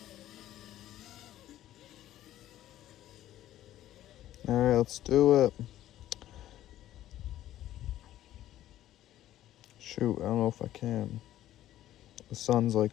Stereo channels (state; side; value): quieter; right; 13.2 dB